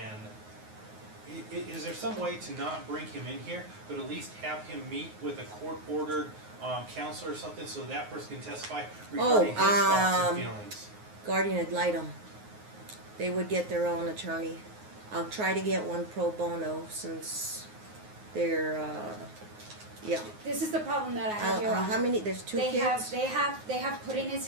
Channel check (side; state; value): left; late; 9.5 ms